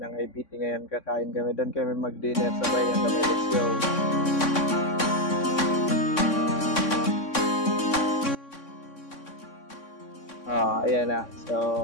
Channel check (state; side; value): late; right; 3.6 ms